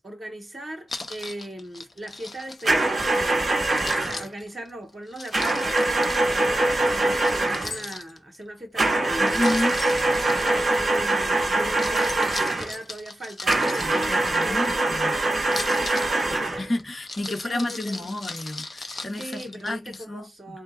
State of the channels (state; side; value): normal; both; correlation 0.90